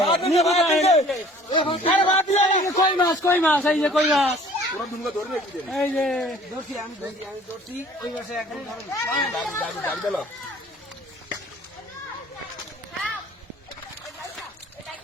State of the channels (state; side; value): normal; both; correlation 0.52